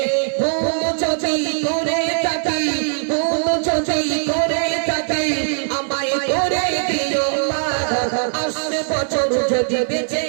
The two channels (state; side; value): silent; left; 66 dB below the other